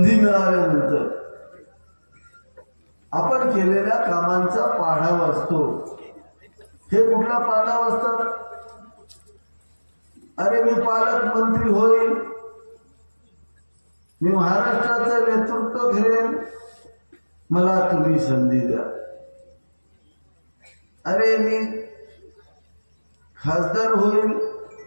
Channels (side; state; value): both; inverted; correlation -1.00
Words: मिळाल्यानंतर आपण केलेल्या कामांचा पाढा वाचतो. हे कुठला पाढा वाचतात? अरे मी पालकमंत्री होईल, मी महाराष्ट्राचं नेतृत्व करेन, मला तुम्ही संधी द्या. अरे मी खासदार होईल,